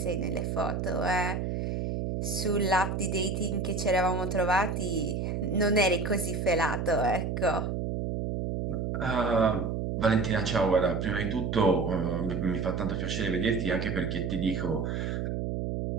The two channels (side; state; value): right; noise; hum, 2 dB below the sound